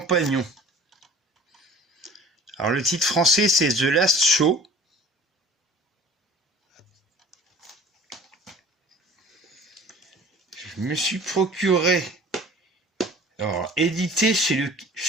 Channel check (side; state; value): both; normal; correlation 0.46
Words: Alors le titre français c'est The Last Show. Je me suis procuré, alors édité chez Le